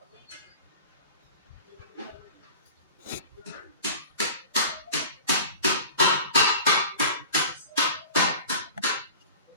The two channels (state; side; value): inverted; both; correlation -0.39